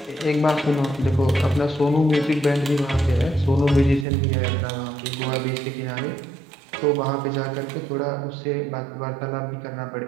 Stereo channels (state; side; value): drops out; left; at 4.0 s